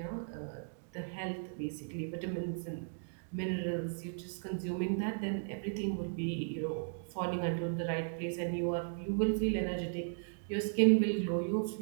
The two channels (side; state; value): left; silent; digital silence